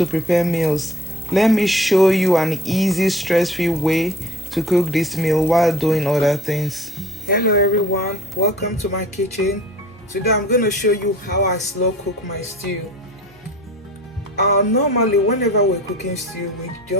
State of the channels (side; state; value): both; normal; correlation 0.49